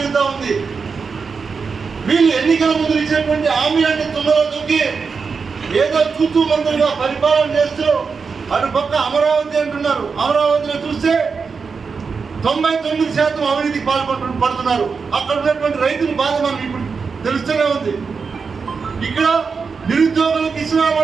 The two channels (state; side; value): quieter; left; 5.2 dB